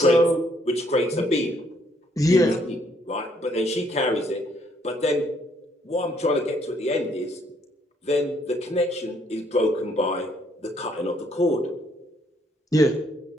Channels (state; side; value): normal; both; correlation 0.68